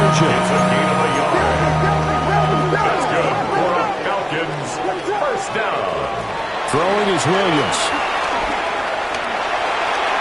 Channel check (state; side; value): identical; both; correlation 1.00